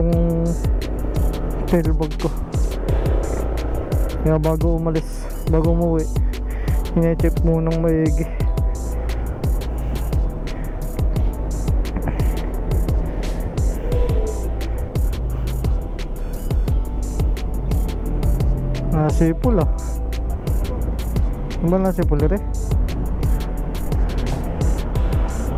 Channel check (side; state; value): both; identical; correlation 1.00